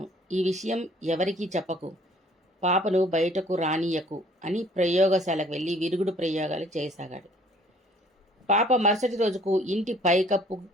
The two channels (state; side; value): normal; both; correlation 0.56